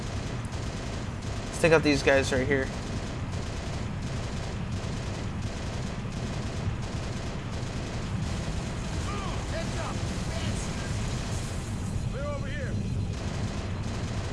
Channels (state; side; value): identical; both; correlation 1.00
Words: Let's take out these guys right here.